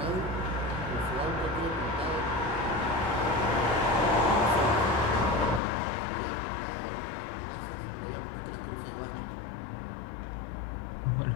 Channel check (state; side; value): drops out; right; at 5.6 s